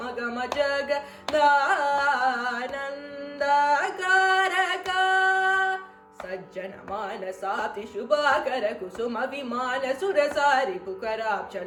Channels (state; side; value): identical; both; correlation 1.00